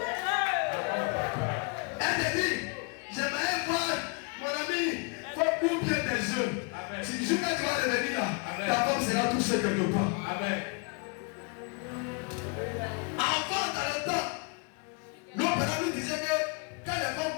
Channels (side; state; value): right; quieter; 33.0 dB